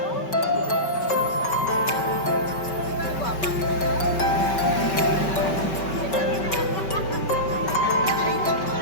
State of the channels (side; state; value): right; late; 5.3 ms